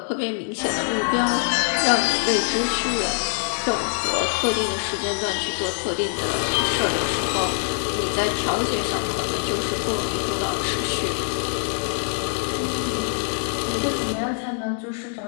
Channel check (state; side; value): silent; right; 59 dB below the other